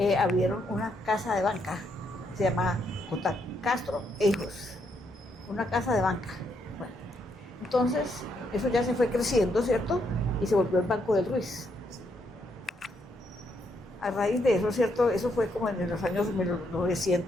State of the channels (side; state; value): both; normal; correlation 0.76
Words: abrieron una casa de banca, se llama J. Castro e Hijos, una casa de banca. Bueno, entonces eso ya se fue creciendo, ¿cierto? Y se volvió el Banco del Ruiz. A raíz de eso, ¿cierto? Eso fue como en los años